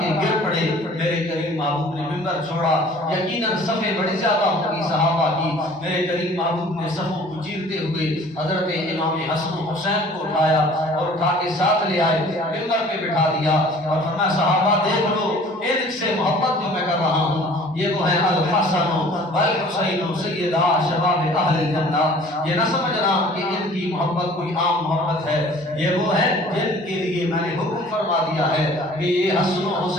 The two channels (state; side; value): normal; both; correlation 0.50